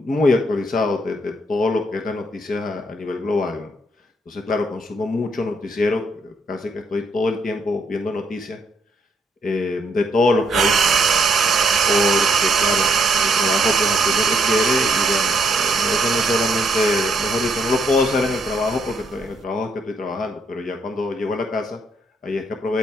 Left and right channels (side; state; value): both; normal; correlation 0.72